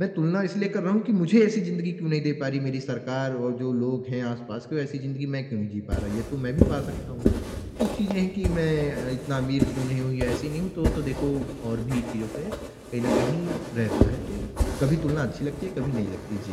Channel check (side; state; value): both; identical; correlation 1.00